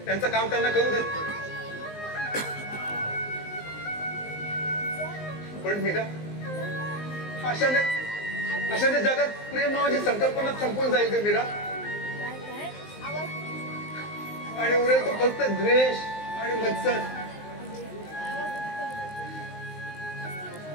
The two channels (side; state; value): right; late; 19 ms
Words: त्यांचं काम त्यांना करू दे. पण मीरा, अशाने जगात प्रेम नावाची संकल्पना संपून जाईल का मीरा? आणि उरेल तो फक्त द्वेष आणि मत्सर.